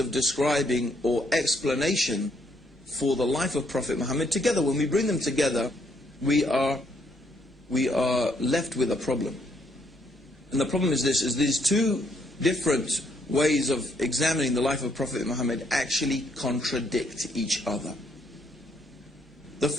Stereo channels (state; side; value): normal; both; correlation 0.71